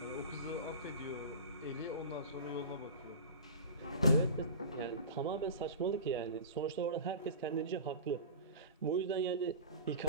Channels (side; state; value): both; inverted; correlation -0.34